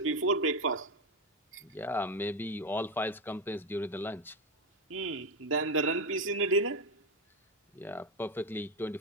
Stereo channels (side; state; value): both; normal; correlation 0.11